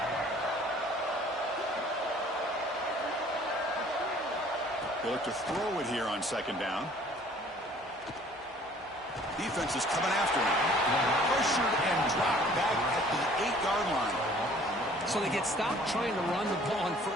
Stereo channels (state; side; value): normal; both; correlation 0.54